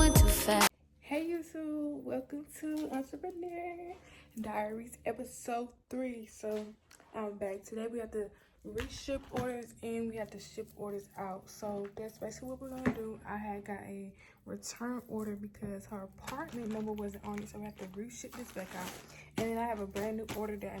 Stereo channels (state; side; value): identical; both; correlation 1.00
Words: too fast. Hey YouTube, welcome to Entrepreneur Diaries episode 3. So I'm back. Today we have to reship orders and we have to ship orders out. So that's basically what we're gonna do. I had got a return order because her apartment number wasn't on it, so we have to reship this back out. And then I have a brand new order that I